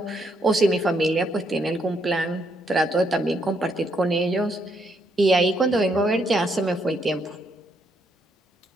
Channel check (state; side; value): normal; both; correlation 0.74